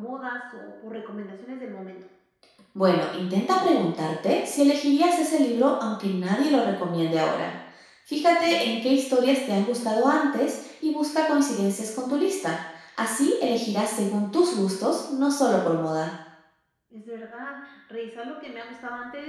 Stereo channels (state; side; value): identical; both; correlation 1.00